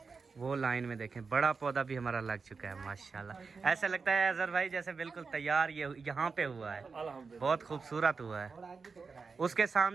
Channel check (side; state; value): left; quieter; 4.8 dB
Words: वो लाइन में देखें बड़ा पौधा भी हमारा लग चुका है माशाल्लाह। ऐसा लगता है अजहर भाई जैसे बिल्कुल तैयार ये यहाँ पे हुआ है, बहुत खूबसूरत हुआ है। उसके